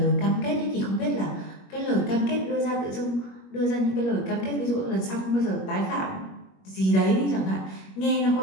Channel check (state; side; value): late; right; 21 ms